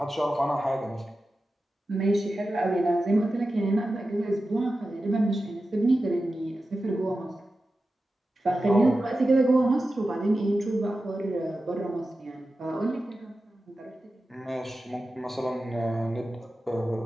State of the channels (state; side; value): normal; both; correlation 0.93